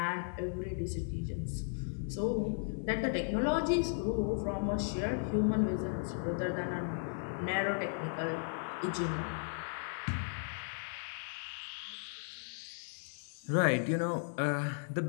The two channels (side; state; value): right; silent; 54 dB below the other